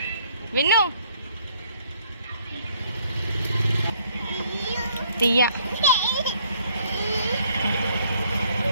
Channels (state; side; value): inverted; both; correlation -0.64